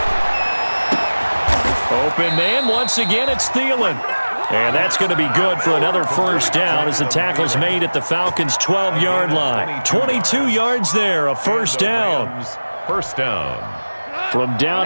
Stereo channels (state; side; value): inverted; both; correlation -1.00